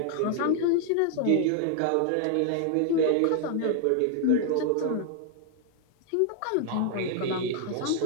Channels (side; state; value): both; different; correlation 0.00